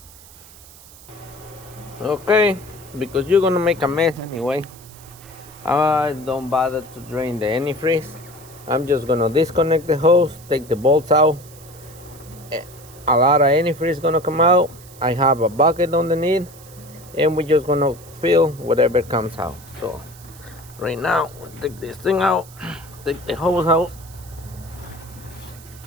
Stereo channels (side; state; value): right; noise; hiss, 21 dB below the sound